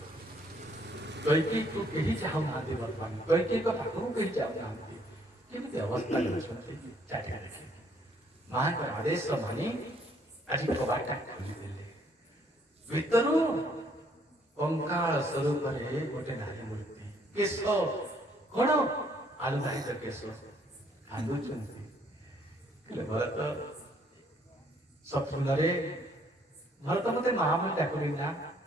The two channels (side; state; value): both; normal; correlation 0.66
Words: କୈକେୟୀକୁ କେହି ଚାହୁଁନାହାନ୍ତି ବର୍ତ୍ତମାନ। କୈକେୟୀଙ୍କ ପାଖକୁ କେହି ଚାହୁଁନାହାନ୍ତି। କେମିତି ଅବସ୍ଥା ଅଛନ୍ତି ଚାରିଆଡ଼େ। ମାଙ୍କର ଆଦେଶ ମାନି ଆଜି କବାଟଟା ଖୋଲିଦେଲେ। ଭିତରୁ କଙ୍କାଳ ସ୍ୱରୂପରେ ଗୋଟେ ନାରୀ ମୂର୍ତ୍ତି। କେଶ କଣ ଆଲୁଧାରିତ କେଶ, କାନ୍ଦୁଛନ୍ତି। ଭରତ ସ୍ୱପ୍ନରେ ଭରତ ମତେ ମା ବୋଲି ଡାକୁନି ନା?